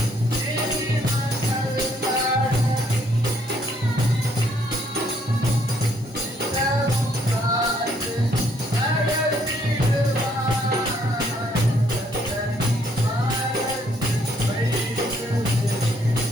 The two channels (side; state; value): both; normal; correlation 0.68